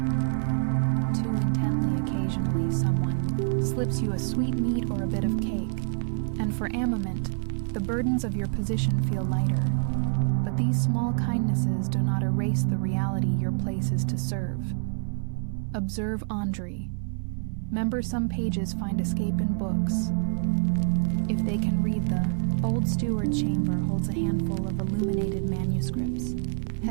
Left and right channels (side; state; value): left; silent; 56 dB below the other